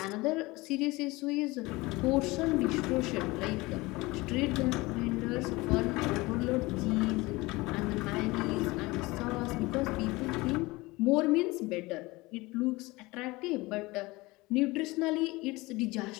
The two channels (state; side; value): quieter; right; 22.0 dB